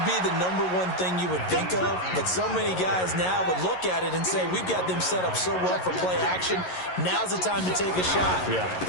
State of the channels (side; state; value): right; late; 11 ms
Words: be the number one thing you would think of, but so many guys now would look at it and say, we've got them set up so well for play action. Now's the time to take a shot. Yeah.